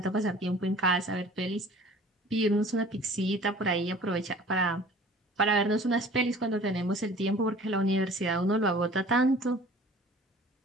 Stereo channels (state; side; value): normal; both; correlation 0.47